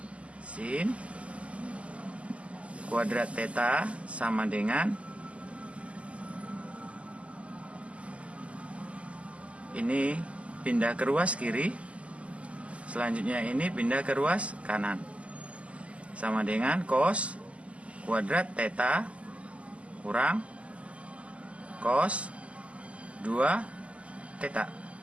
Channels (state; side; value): late; left; 0.061 ms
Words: sin kuadrat theta sama dengan ini pindah ke ruas kiri, selanjutnya ini pindah ke ruas kanan, sama dengan cos kuadrat theta kurang cos 2 theta.